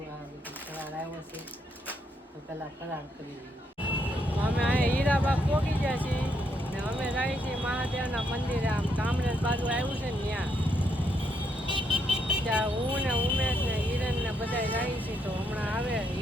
આ બધું ફરાળ આવ્યો છે તો પહેલાં ફરાળ કરી લઈએ. અમે અહીંયા હીરાબાગ પહોંચી ગયા છીએ ને અમે જઈએ છીએ મહાદેવના મંદિરે. આમ કામરેજ બાજુ આવ્યું છે ને ત્યાં હું ને ઉમેશ ને હિરેન ને બધા જાય છે. તો હમણાં આવે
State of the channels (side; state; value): both; normal; correlation 0.76